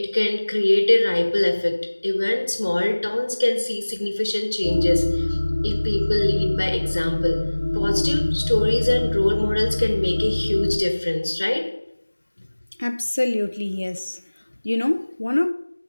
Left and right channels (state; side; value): inverted; both; correlation -1.00